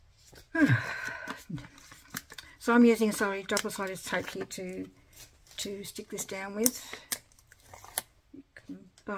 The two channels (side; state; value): both; identical; correlation 1.00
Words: So I'm using double-sided tape here to stick this down with. You can